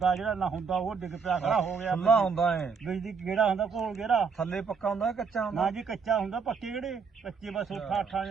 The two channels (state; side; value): quieter; left; 5.6 dB